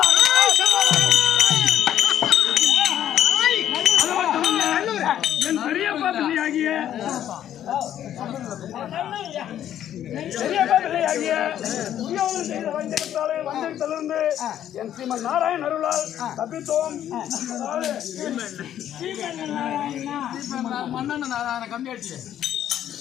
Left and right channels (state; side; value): quieter; right; 10.9 dB